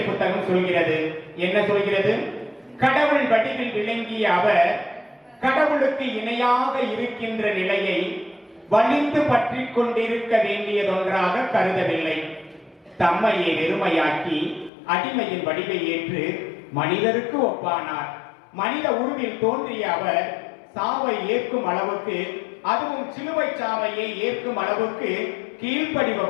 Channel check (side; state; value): right; drops out; at 14.7 s